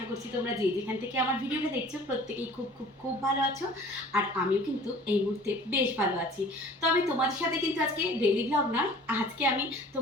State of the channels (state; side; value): normal; both; correlation 0.47